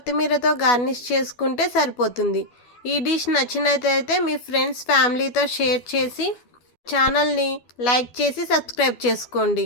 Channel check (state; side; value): late; right; 12 ms